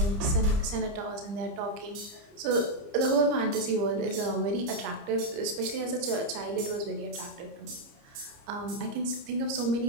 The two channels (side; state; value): left; late; 30 ms